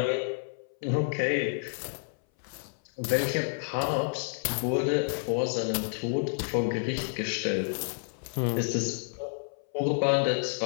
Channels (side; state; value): right; silent; 57 dB below the other